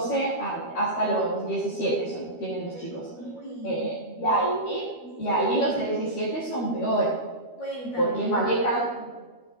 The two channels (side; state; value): right; late; 13 ms